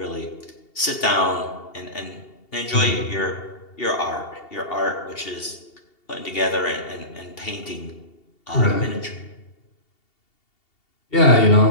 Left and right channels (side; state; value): right; late; 2.7 ms